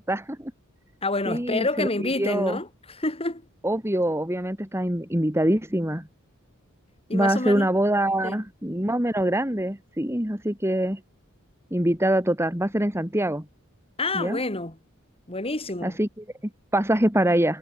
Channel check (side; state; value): both; normal; correlation 0.77